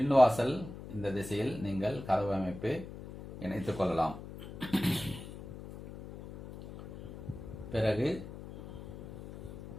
இந்த திசையில் நீங்கள் கதவு அமைப்பு இணைத்துக் கொள்ளலாம். பிறகு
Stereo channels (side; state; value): left; noise; hum, 12 dB below the sound